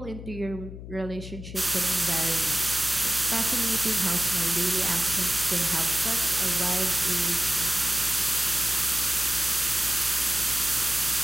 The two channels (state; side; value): noise; left; hum, 11 dB below the sound